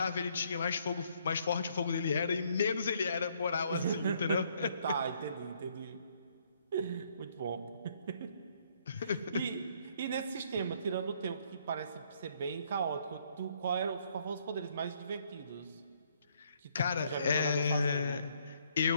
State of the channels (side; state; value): both; inverted; correlation -0.67